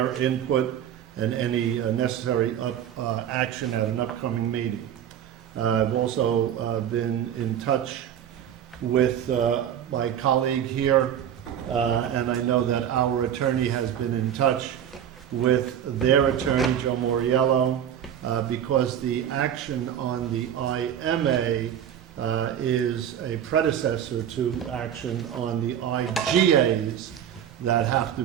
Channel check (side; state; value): left; quieter; 9.7 dB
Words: input and any necessary action at an upcoming meeting. I've also been in touch with my colleague here, and I know that our attorney has been in touch with their attorney, Joe Moriello, because the action on the IMA is a predecessor to action on the IGAs that have to